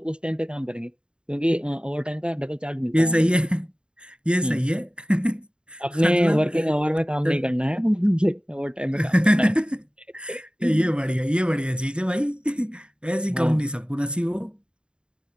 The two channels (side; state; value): left; late; 0.052 ms